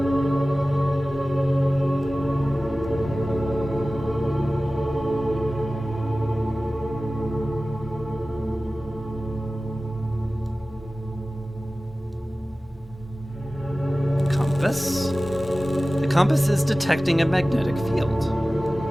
Compass? The compass is detecting a magnetic field.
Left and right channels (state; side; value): normal; both; correlation 0.97